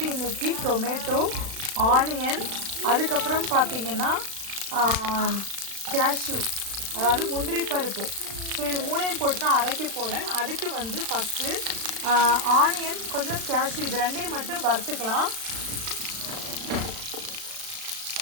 இன்றைக்கி டொமேட்டோ, ஆனியன், அதுக்கப்புறம் பார்த்திங்கன்னா கேஷ்யூ, அதாவது முந்திரி பருப்பு. ஸோ இது 3ஐயும் போட்டு தான் அரைக்க போகிறேன். அதுக்கு ஃபஸ்ட்டு ஆனியன், கொஞ்சம் கேஷ்யூ, இது 2ஐயும் மட்டும் வறுத்துக்கலாம்.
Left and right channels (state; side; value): late; left; 36 ms